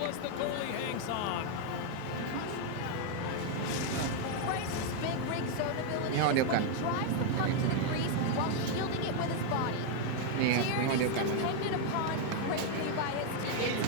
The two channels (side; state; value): both; different; correlation 0.01